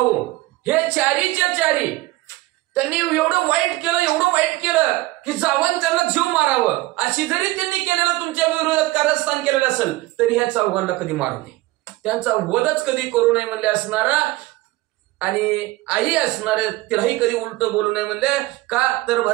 हे चारीच्या चारी त्यांनी एवढं वाईट केलं की जावं त्यांना जीव मारावं, अशी जरी त्यांनी केलेलं तुमच्या विरोधात कारस्थान केलेलं असेल तरी ह्या चौघांना कधी मारू नये, त्यांचा वधच कधी करू नये म्हणले असणारा. आणि आई असणारे तिलाही कधी उलट बोलू नये म्हणले. का तर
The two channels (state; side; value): quieter; left; 19.2 dB